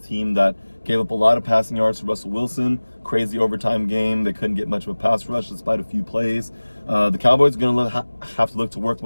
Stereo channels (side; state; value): both; inverted; correlation -1.00